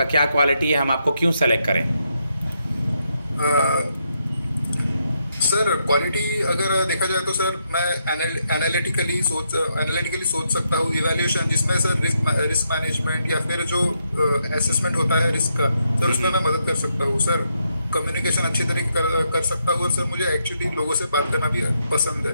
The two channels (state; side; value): inverted; both; correlation -0.79